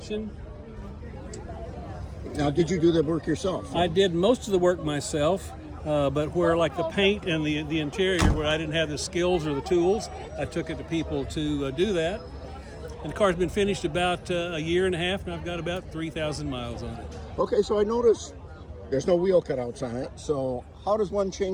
Now, did you do the work yourself? I did most of the work myself, but where like the paint and the interior, where I didn't have the skills or the tools, I took it to people to do that. And the car's been finished about a year and a half, and I've got about 3,000 miles on it. Okay, so I noticed there's no wheel cutouts on it. So how does one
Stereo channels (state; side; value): identical; both; correlation 1.00